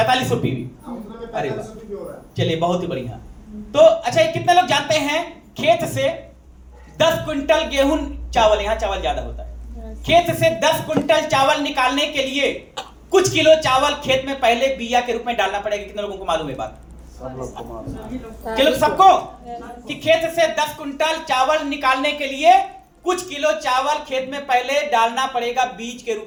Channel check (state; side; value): identical; both; correlation 1.00